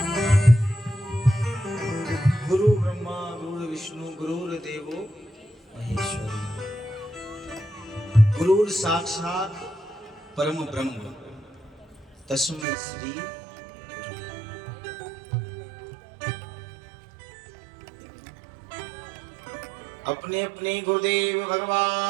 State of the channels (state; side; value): drops out; left; at 12.7 s